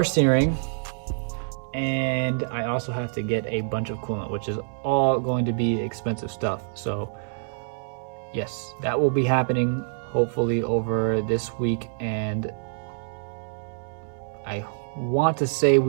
steering, and I also have to get a bunch of coolant, which is all going to be expensive stuff. So yes, that will be happening hopefully over this week, and I want to say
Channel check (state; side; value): silent; left; 60 dB below the other